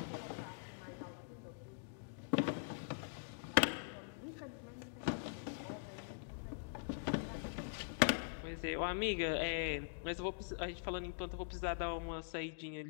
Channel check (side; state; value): right; silent; digital silence